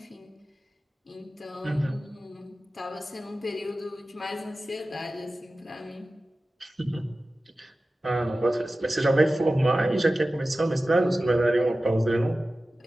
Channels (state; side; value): normal; both; correlation 0.95